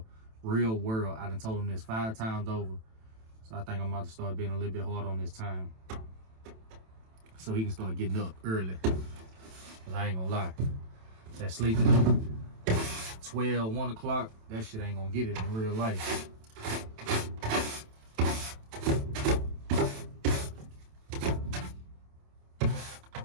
I done told him this 5 times over. So I think I'm about to start being a little bit hard on this time, so he can start getting up early. Cause I ain't gonna lie, that sleeping 12, 1 o'clock, that shit ain't gonna get it in real life. This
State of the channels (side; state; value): left; late; 27 ms